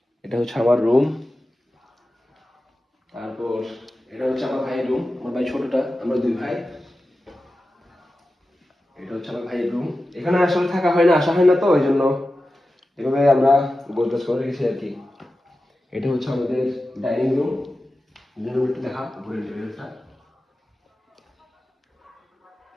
এটা হচ্ছে আমার রুম। তারপর এটা হচ্ছে আমার ভাইয়ের রুম, আমার ভাই ছোটটা, আমরা দুই ভাই। এটা হচ্ছে আমার ভাইয়ের রুম। এখানে আসলে থাকা হয় না, আসা হয় না, তো ওই জন্য এভাবে আমরা গোছগাছ করে রেখেছি আর কি। এটা হচ্ছে আমাদের ডাইনিং রুম। একটু দেখা ঘুরে লেভেলটা।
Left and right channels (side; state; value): both; normal; correlation 0.93